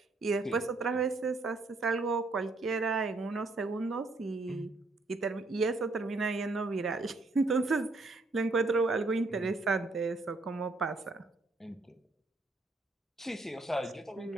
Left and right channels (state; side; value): quieter; left; 3.3 dB